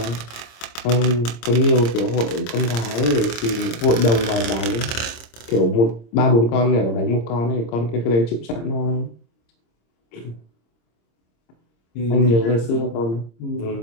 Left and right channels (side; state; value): right; late; 26 ms